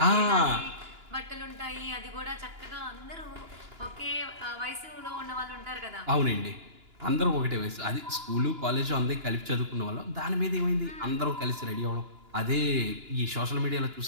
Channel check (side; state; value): left; late; 2.9 ms